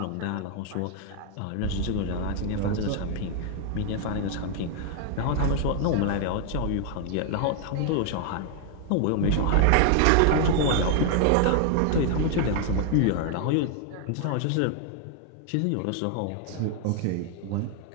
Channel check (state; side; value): different; both; correlation 0.00